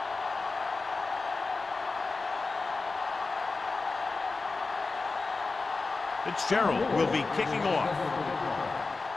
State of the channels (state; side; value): quieter; right; 3.9 dB